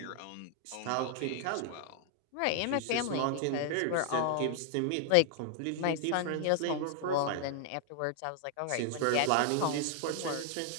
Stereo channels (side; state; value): both; different; correlation -0.01